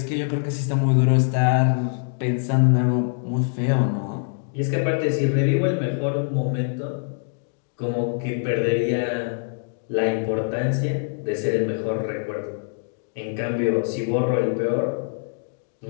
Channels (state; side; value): silent; right; digital silence